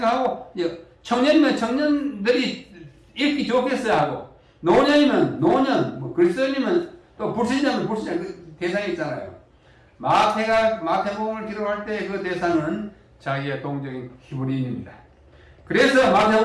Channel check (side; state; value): both; identical; correlation 1.00